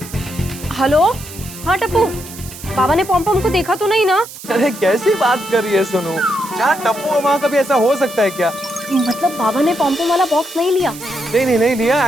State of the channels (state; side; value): noise; right; hiss, 14 dB below the sound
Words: हेलो, हाँ टप्पू, बाबा ने पॉम पॉम को देखा तो नहीं ना? अरे कैसी बात कर रही है सोनू? जहाँ टप्पू है वहाँ कभी ऐसा हो सकता है क्या? मतलब बाबा ने पॉम पॉम वाला बॉक्स नहीं लिया? नहीं लिया।